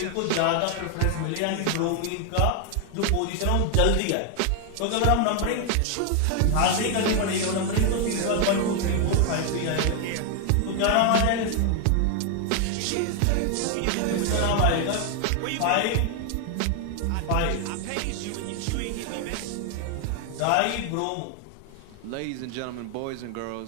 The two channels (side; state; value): both; different; correlation 0.00